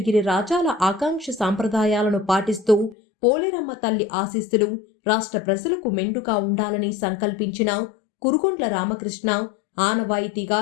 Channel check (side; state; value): right; drops out; at 3.0 s